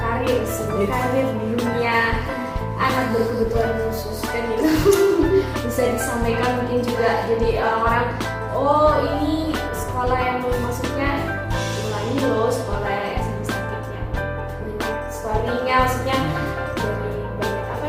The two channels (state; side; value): identical; both; correlation 1.00